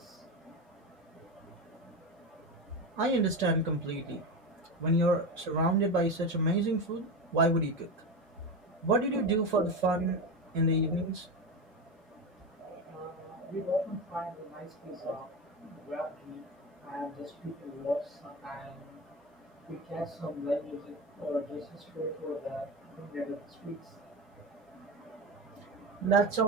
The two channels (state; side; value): normal; both; correlation 0.20